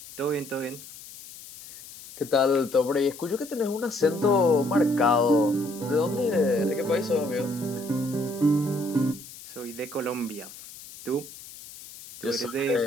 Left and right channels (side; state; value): left; noise; hiss, 16 dB below the sound